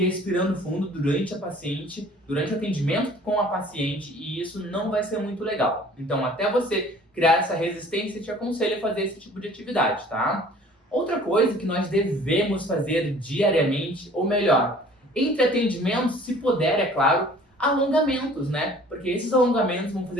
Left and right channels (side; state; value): both; normal; correlation 0.51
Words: expirando fundo durante o atendimento com a paciente, e isso não vai ser muito legal. Então, até você criar essa resistência, eu te aconselho a fazer esse tipo de atividade, tá? Outra coisa que nós devemos fazer diariamente, ou melhor, entre atendimentos, se puder, é claro, alongamentos, né? Porque esses alongamentos vão